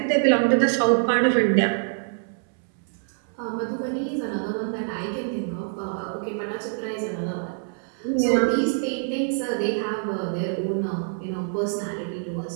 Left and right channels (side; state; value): left; silent; 62 dB below the other